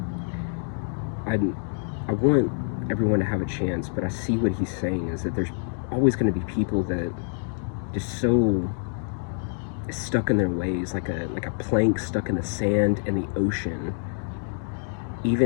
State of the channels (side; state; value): right; silent; 61 dB below the other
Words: I want everyone to have a chance, but I see what he's saying is that there's always going to be people that just so stuck in their ways, like a plank stuck in the sand and the ocean.